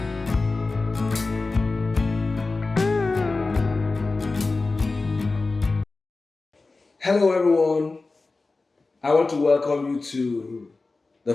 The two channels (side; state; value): right; quieter; 3.6 dB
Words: Hello, everyone. I want to welcome you to the